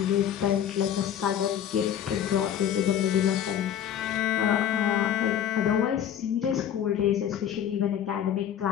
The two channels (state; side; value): quieter; right; 9.7 dB